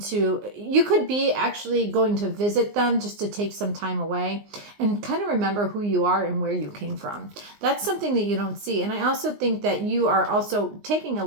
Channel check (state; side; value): late; left; 19 ms